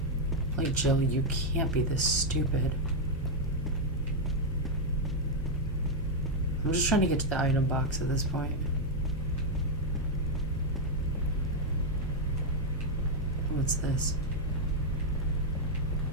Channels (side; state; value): left; noise; hum, 10 dB below the sound